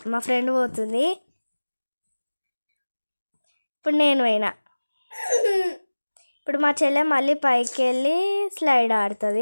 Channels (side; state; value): both; inverted; correlation -1.00